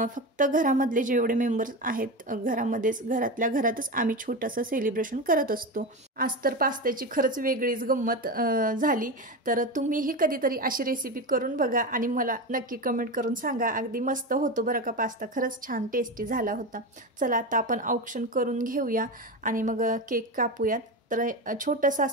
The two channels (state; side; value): normal; both; correlation 0.21